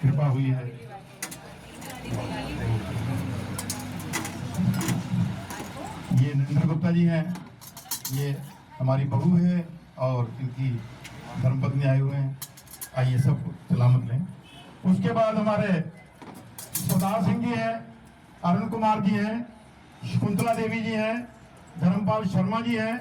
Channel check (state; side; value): identical; both; correlation 1.00